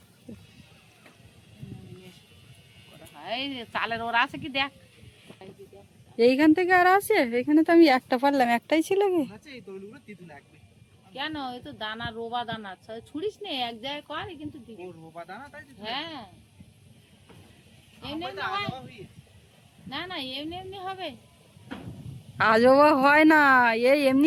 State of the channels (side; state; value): both; identical; correlation 1.00